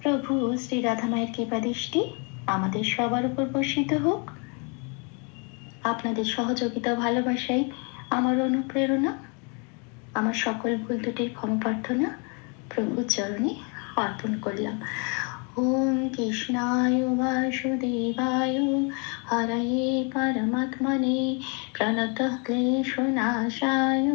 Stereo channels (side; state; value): right; quieter; 34.8 dB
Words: প্রভু শ্রী রাধা মায়ের কৃপা দৃষ্টি আমাদের সবার উপর বর্ষিত হোক। আপনাদের সহযোগিতা ও ভালোবাসাই আমার অনুপ্রেরণা। আমার সকল ভুল ত্রুটির ক্ষমা প্রার্থনা প্রভুর চরণে অর্পণ করলাম। ওম কৃষ্ণায় বাসুদেবায় হরয়ে परमात्मने प्रणतः क्लेशनाशाय